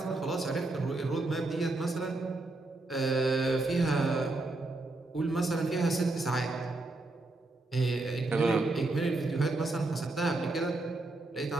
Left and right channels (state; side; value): quieter; left; 3.0 dB